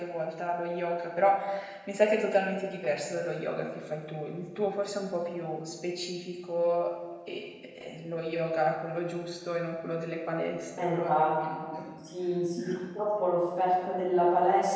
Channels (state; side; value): identical; both; correlation 1.00